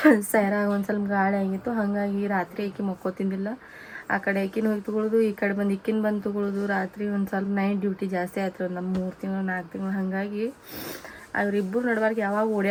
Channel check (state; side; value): identical; both; correlation 1.00